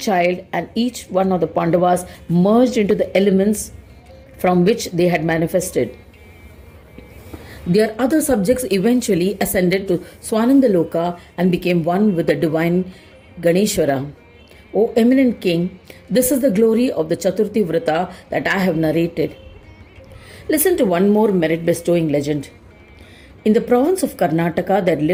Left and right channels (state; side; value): identical; both; correlation 1.00